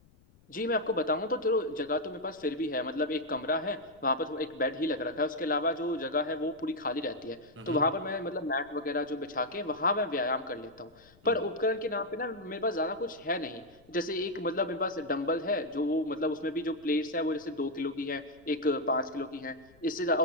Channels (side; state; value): left; noise; rumble, 29 dB below the sound